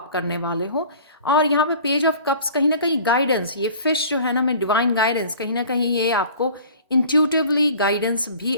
करने वाले हो। और यहाँ पे पेज ऑफ कप्स कहीं ना कहीं गाइडेंस, ये फिश जो है ना, मैं डिवाइन गाइडेंस, कहीं ना कहीं ये आपको इंट्यूटिवली गाइडेंस भी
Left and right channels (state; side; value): inverted; both; correlation -0.46